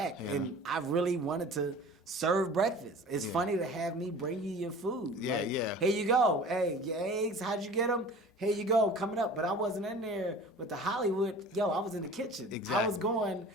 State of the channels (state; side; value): normal; both; correlation 0.42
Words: and I really wanted to serve breakfast. It's funny to have me bring you your food. Yeah, like, yeah. Here you go. Hey, your eggs, how'd you get them? Here you go, coming up. But I wasn't in there with the Hollywood. Yo, I was in the kitchen. Exactly. I was going